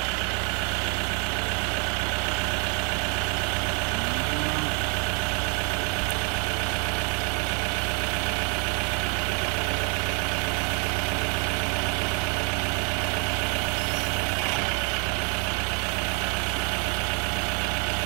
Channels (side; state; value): left; quieter; 36.5 dB